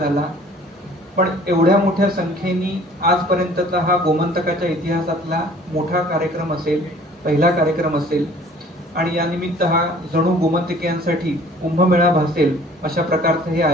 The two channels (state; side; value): normal; both; correlation 0.52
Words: पण एवढ्या मोठ्या संख्येने आजपर्यंतचा हा गोमंतकाच्या इतिहासातला मोठा कार्यक्रम असेल, पहिला कार्यक्रम असेल आणि या निमित्त हा जणू गोमंतकीयांसाठी कुंभमेळा भासेल अशा प्रकारचं हे